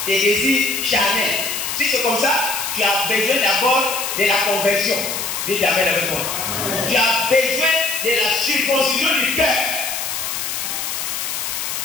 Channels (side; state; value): left; noise; hiss, 3 dB below the sound